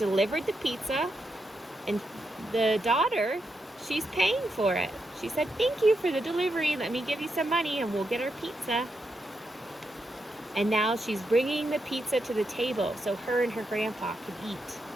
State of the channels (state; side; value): normal; both; correlation 0.84